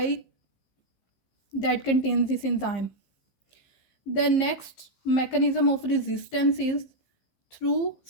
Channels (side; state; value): right; late; 15 ms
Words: that contains this enzyme. The next mechanism of resistance is through